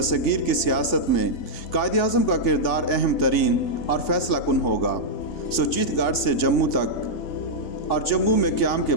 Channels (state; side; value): late; right; 3.5 ms